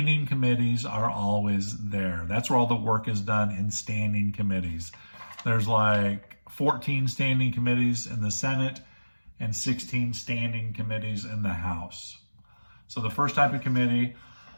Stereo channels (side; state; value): both; inverted; correlation -1.00